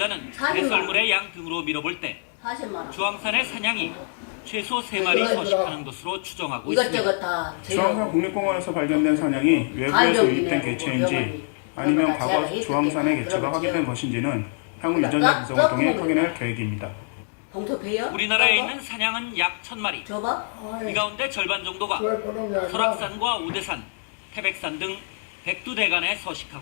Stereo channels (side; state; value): right; silent; 59 dB below the other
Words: 배설물의 양 등으로 밀어볼 때 주황산의 사냥이 최소 3마리 서식하는 것으로 추정하고 있습니다. 이것저것 다 주황산 국립공원에서 발견된 사냥이 외부에서 유입된 개체인지 아니면 과거 주황산의 개체가 확인된 것인지는 향후 유전자 분석을 통해 확인할 계획입니다. 우리나라에 있는 사냥은 약 1000마리. 이 가운데 절반 정도가 설악산과 오대산, 태백산 등 백두대간에